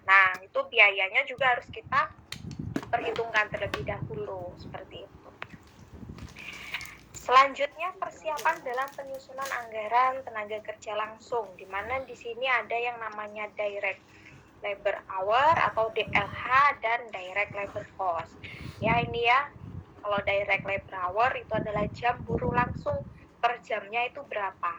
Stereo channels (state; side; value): identical; both; correlation 1.00